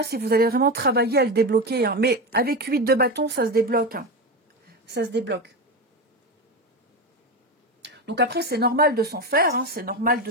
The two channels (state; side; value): normal; both; correlation 0.18